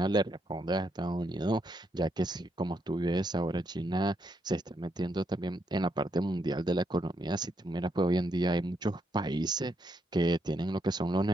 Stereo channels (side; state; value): both; normal; correlation 0.78